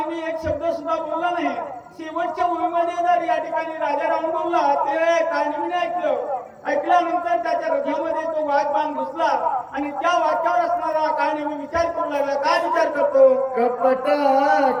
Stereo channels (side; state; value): both; identical; correlation 1.00